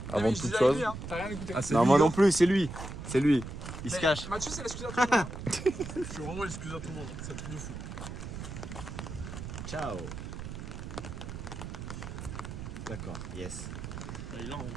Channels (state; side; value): noise; right; rumble, 8 dB below the sound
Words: avant toute chose. T'as rien écouté. Ah, c'est Non, lui, moi hein. non plus, c'est lui. C'est lui. Il se Mais cache. Mathieu, c'est l'excuse à tout le monde. Je suis vraiment excuse à tout le monde, c'est un truc de fou. Ciao. D'accord, yes. Bah, il a en vrai.